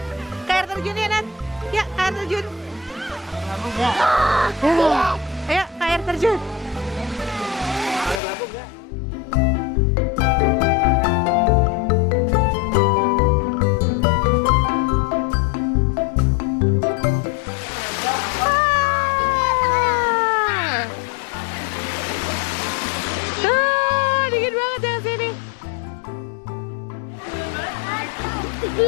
Ke air terjun ya Nat. Ya ke air terjun. Ayo ke air terjun. Dingin banget yang sini.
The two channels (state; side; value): drops out; right; at 8.2 s